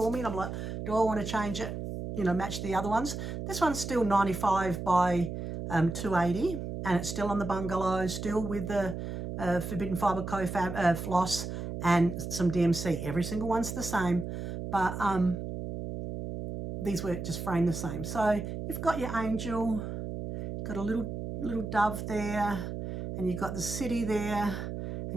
me, and I'm like, do I want to change it, you know, match the other ones? This one's still 95 by 280, and it's still on the bungalow, still with the Forbidden Fibre Co-Fab floss and some DMC. Every single one's the same, but these were just framed the same. So you've got your angel, got a little dove there, and you've got the city there,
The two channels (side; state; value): right; noise; hum, 6 dB below the sound